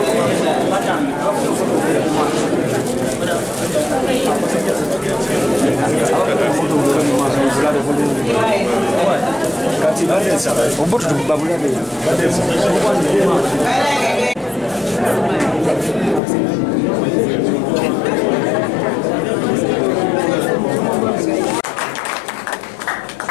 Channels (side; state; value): right; drops out; at 16.2 s